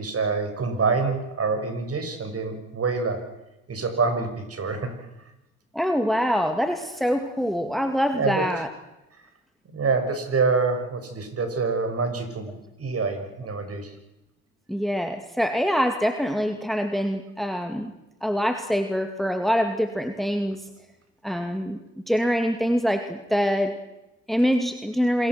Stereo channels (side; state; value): both; normal; correlation 0.56